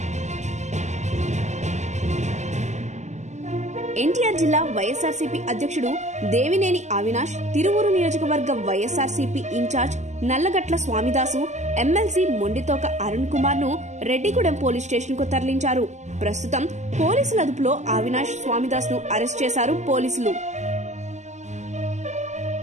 ఎన్టీఆర్ జిల్లా వైఎస్ఆర్సీపీ అధ్యక్షుడు దేవినేని అవినాష్, తిరువూరు నియోజకవర్గ వైఎస్ఆర్సీపీ ఇన్ఛార్జ్ నల్లగట్ల స్వామిదాసు, ఎమ్మెల్సీ మొండితోక అరుణ్ కుమార్ ను రెడ్డిగూడెం పోలీస్ స్టేషన్ కు తరలించారు. ప్రస్తుతం పోలీసుల అదుపులో అవినాష్, స్వామిదాస్ ను అరెస్ట్ చేశారు పోలీసులు.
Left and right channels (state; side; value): late; left; 0.34 ms